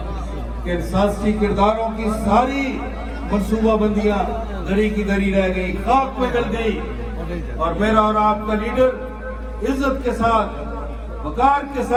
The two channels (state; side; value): identical; both; correlation 1.00